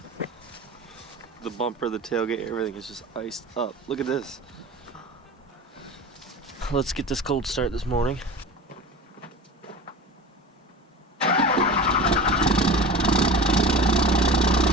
The bumper, the tailgate, everything is just iced up. Look at this. Let's get this cold start this morning.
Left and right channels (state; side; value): normal; both; correlation 0.34